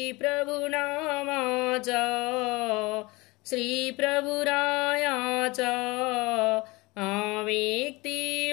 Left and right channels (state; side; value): quieter; right; 23.6 dB